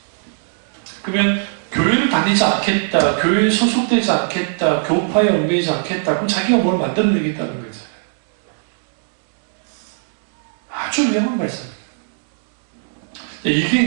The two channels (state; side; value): silent; left; 66 dB below the other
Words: 그러면 교회를 다니지 않겠다, 교회에 소속되지 않겠다, 교파에 얽매이지 않겠다, 그럼 자기가 뭘 만들어내겠다는 거죠. 아주 위험한 말씀입니다. 이게